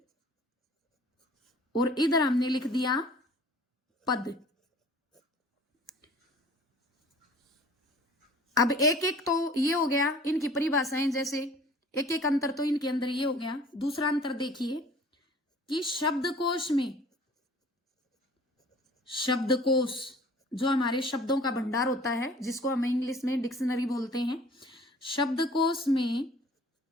और इधर हमने लिख दिया पद। अब एक एक तो ये हो गया इनकी परिभाषाएं, जैसे एक एक अंतर तो इनके अंदर ये हो गया। दूसरा अंतर देखिए कि शब्दकोश में, शब्दकोश जो हमारे शब्दों का भंडार होता है, जिसको हम इंग्लिश में डिक्शनरी बोलते हैं, शब्दकोश में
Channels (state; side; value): normal; both; correlation 0.49